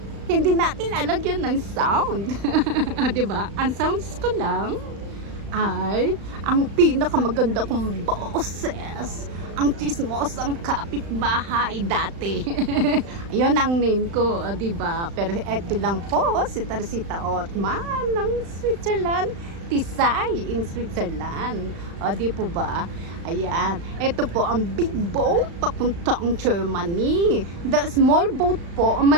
hindi natin lalagyan ng sound. Diba? Ang sounds ko lang ay ang pinakamaganda kong boses, ang chismosang kapitbahay dati. Yun ang name ko, diba? Pero eto lang po, si Teresita Ortman ng Switzerland, Tisay in Switzerland. O, di po ba? Ayan. Ito po ang big boat papuntang Germany. The small boat po,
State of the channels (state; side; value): late; left; 35 ms